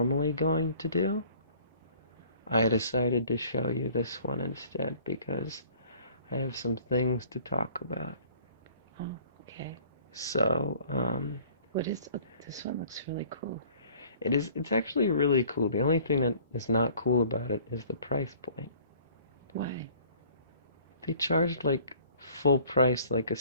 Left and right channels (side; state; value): both; inverted; correlation -0.54